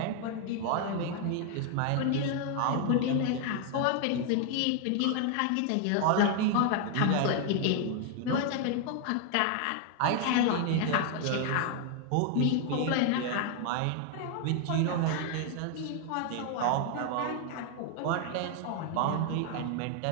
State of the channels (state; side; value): different; both; correlation 0.00